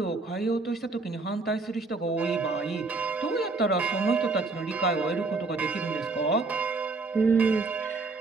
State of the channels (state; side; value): quieter; left; 3.7 dB